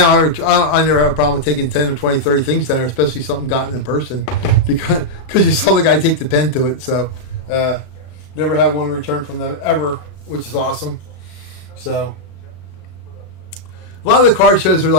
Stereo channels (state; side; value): late; right; 34 ms